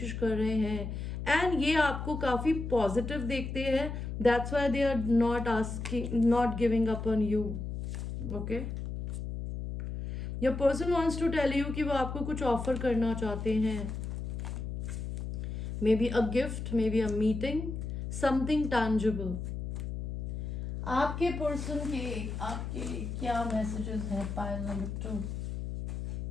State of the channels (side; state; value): left; noise; hum, 5 dB below the sound